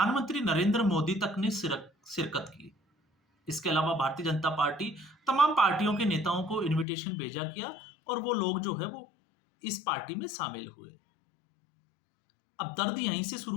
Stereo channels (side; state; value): right; drops out; at 6.9 s